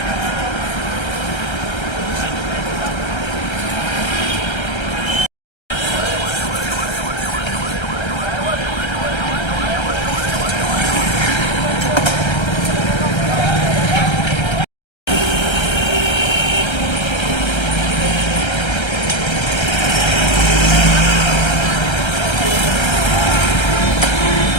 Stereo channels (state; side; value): late; right; 1.3 ms